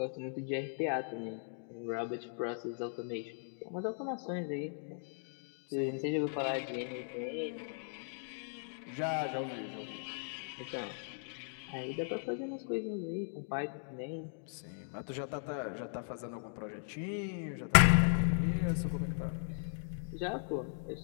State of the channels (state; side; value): silent; right; digital silence